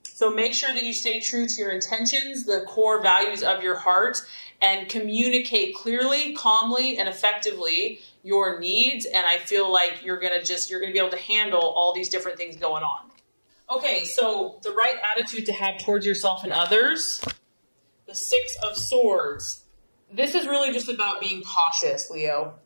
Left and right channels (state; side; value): inverted; both; correlation -1.00